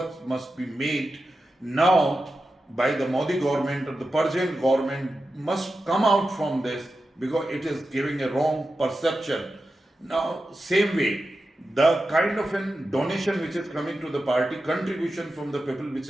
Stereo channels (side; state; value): both; normal; correlation 0.91